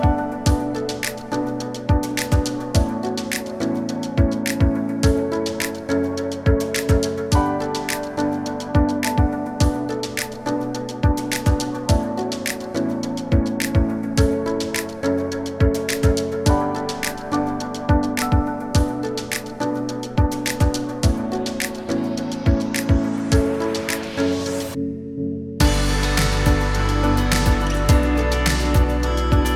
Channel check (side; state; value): both; identical; correlation 1.00